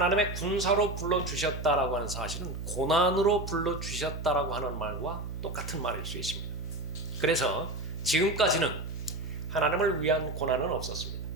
군사로 불러주셨다라고 하는 사실은 고난으로 불러주셨다라고 하는 말과 똑같은 말일 수 있습니다. 그래서 지금까지는 하나님을 위한 고난은 없었습니다.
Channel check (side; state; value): right; noise; hum, 6 dB below the sound